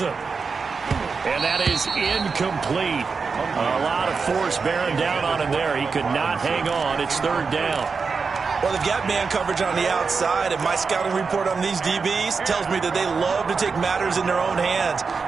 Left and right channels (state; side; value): quieter; left; 5.0 dB